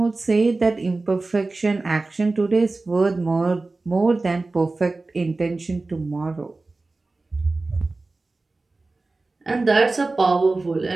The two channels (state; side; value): quieter; left; 3.4 dB